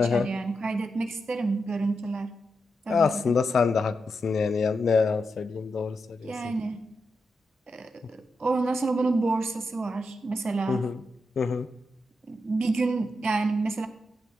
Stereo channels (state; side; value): normal; both; correlation 0.86